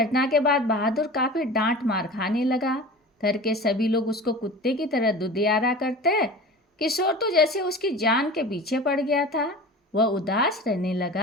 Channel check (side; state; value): both; normal; correlation 0.35